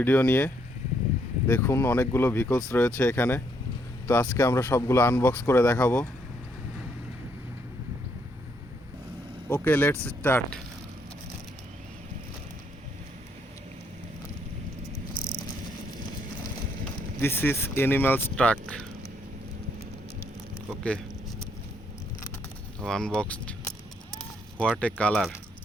নিয়ে। দেখুন অনেকগুলো ভিকলস রয়েছে এখানে। তো আজকে আমরা সবগুলো আনবক্স করে দেখাবো। Okay, let's start. This is animals truck. Okay, unboxed. What a colour!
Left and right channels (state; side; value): normal; both; correlation 0.72